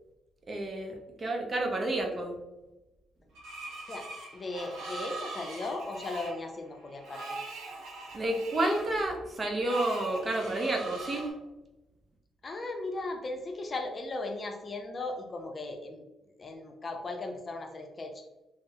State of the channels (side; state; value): both; normal; correlation 0.79